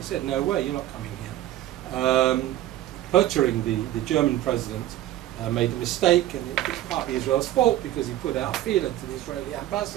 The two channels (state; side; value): quieter; left; 13.9 dB